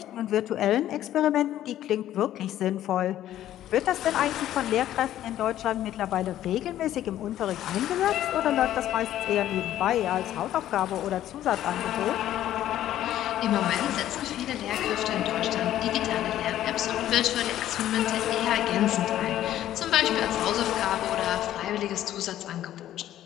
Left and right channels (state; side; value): quieter; right; 12.5 dB